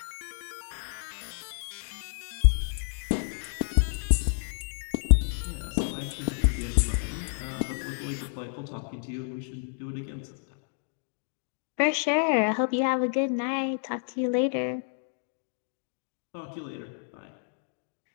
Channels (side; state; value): right; silent; digital silence